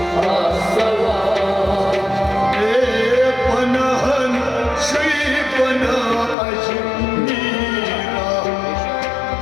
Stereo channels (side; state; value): right; drops out; at 6.4 s